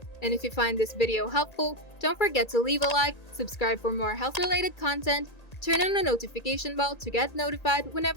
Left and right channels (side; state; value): right; late; 2.3 ms